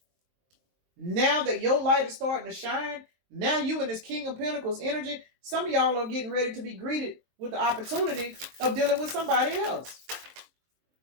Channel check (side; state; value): left; late; 22 ms